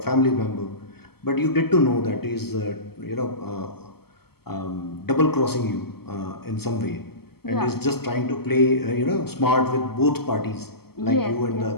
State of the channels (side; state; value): right; late; 0.96 ms